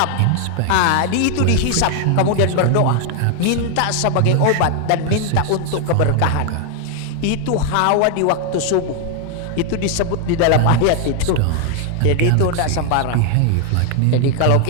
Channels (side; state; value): both; different; correlation 0.00